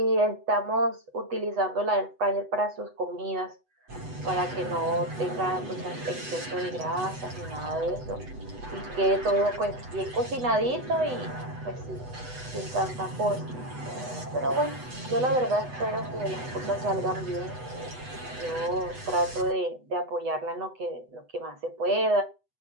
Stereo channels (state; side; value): late; left; 8.0 ms